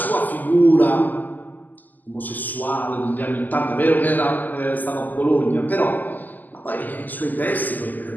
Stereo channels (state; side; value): late; right; 0.084 ms